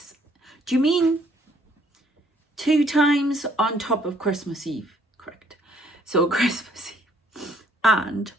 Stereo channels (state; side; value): normal; both; correlation 0.64